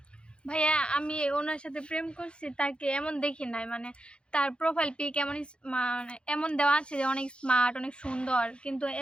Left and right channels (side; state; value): right; late; 0.055 ms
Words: ভাইয়া, আমি ওনার সাথে প্রেম করছি, তাকে এমন দেখি নাই। মানে তার প্রোফাইল পিক এমন মানে এমন দেওয়া আছে যে অনেক স্মার্ট, অনেক সুন্দর, কিন্তু